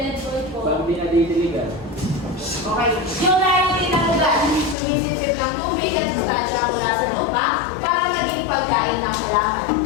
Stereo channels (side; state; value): right; drops out; at 4.8 s